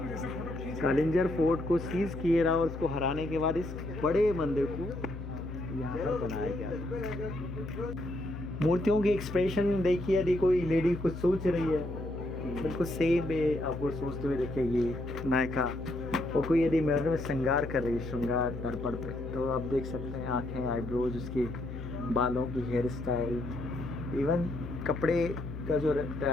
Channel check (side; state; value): left; noise; hum, 9 dB below the sound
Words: कालिंजर फोर्ट को सीज किए रहा, और उसको हराने के बाद इस बड़े मंदिर को मूर्तियों की एक्सप्रेशन देखिए, यदि कोई लेडी कुछ सोच रही है बिल्कुल सेम है, आपको सोचते हुए देखेगी नायिका। और कोई यदि मिरर में श्रृंगार कर रही है, श्रृंगार दर्पण पे, तो आप देख सकते हैं आंखें, आईब्रोज, उसके बालों की हेयर स्टाइल, इवन कपड़े का जो